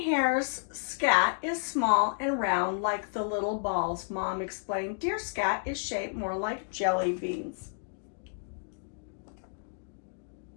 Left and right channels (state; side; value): silent; right; digital silence